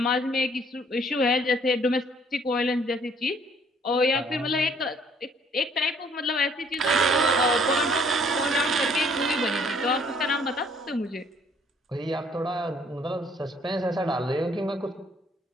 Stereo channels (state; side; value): normal; both; correlation 0.61